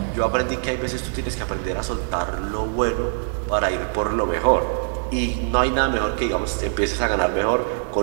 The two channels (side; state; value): left; silent; 63 dB below the other